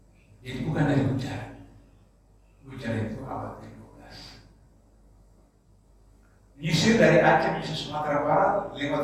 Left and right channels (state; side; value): identical; both; correlation 1.00